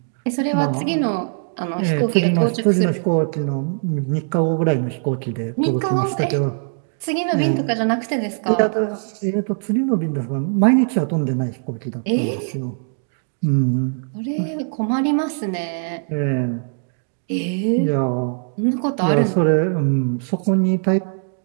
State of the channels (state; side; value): silent; left; 65 dB below the other